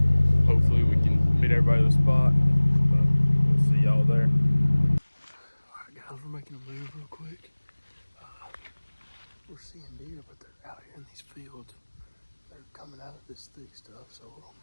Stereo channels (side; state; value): both; inverted; correlation -1.00